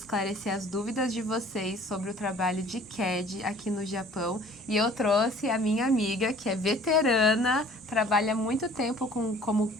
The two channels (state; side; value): normal; both; correlation 0.51